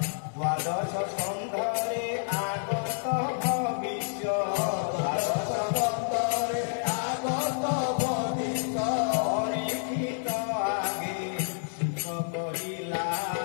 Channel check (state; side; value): silent; right; digital silence